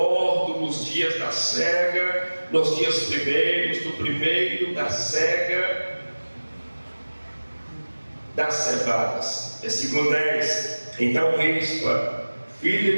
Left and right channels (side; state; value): both; inverted; correlation -1.00